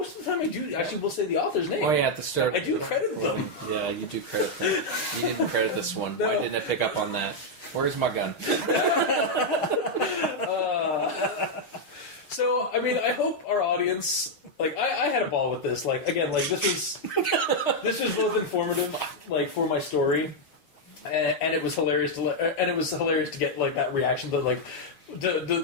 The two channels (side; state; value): right; late; 6.4 ms